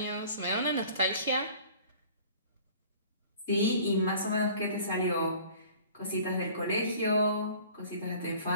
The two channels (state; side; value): inverted; both; correlation -0.48